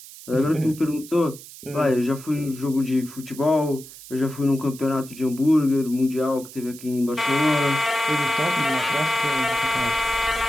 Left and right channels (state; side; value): noise; right; hiss, 17 dB below the sound